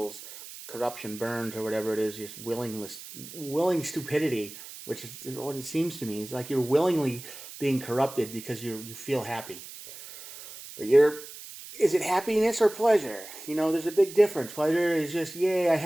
corruption burns, or whatever it is, just willing stupidity, which is what it seems to me. It's like you're willingly being corrupted because you feel happy. But is it happiness or pleasure? There's a big difference. Pleasure is just, yay, I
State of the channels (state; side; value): noise; right; hiss, 14 dB below the sound